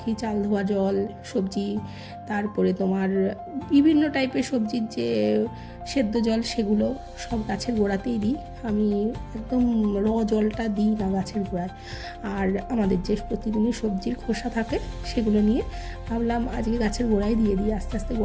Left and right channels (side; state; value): both; identical; correlation 1.00